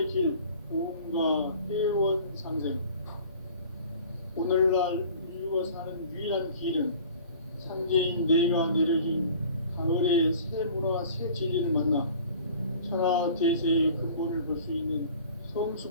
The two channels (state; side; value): inverted; both; correlation -0.47